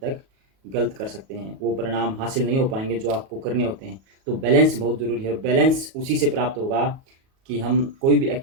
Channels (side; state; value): left; late; 37 ms